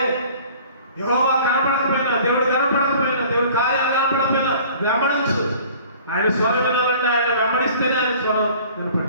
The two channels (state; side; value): inverted; both; correlation -0.49